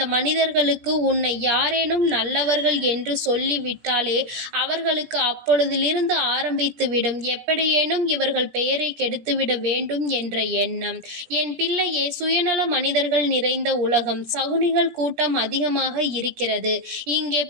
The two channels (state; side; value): late; left; 17 ms